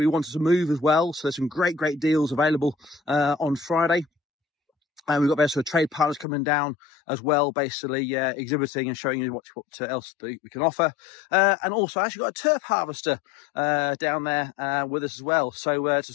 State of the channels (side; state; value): right; drops out; at 6.2 s